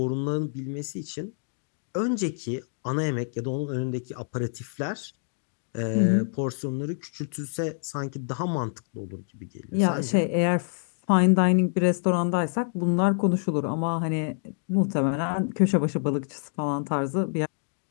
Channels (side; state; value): right; silent; digital silence